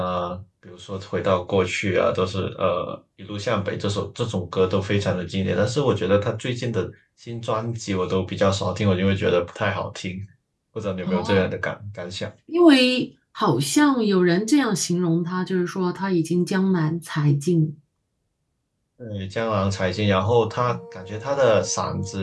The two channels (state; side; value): identical; both; correlation 1.00